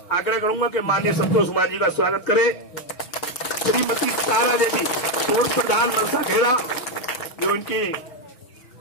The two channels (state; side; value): late; right; 6.4 ms